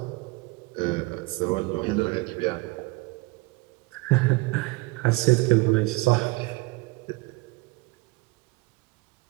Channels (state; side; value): quieter; left; 23.4 dB